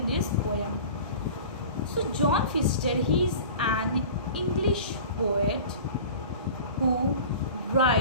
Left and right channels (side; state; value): both; inverted; correlation -0.39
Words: this poem. So John Foster, he is an English poet who